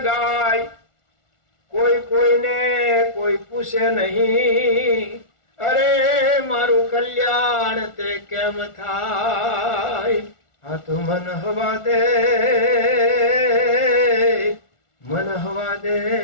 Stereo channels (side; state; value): right; late; 1.4 ms